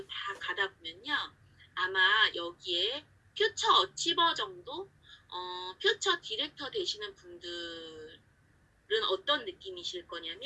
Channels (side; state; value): both; identical; correlation 1.00